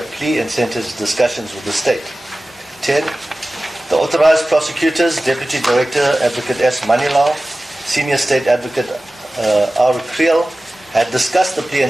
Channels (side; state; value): both; normal; correlation 0.96